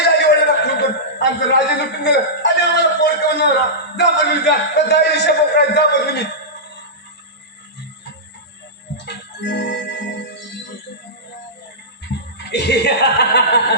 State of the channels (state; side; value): normal; both; correlation -0.15